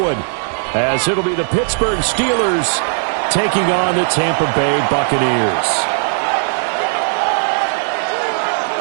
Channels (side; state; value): left; silent; digital silence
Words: as it'll be the Pittsburgh Steelers taking on the Tampa Bay Buccaneers.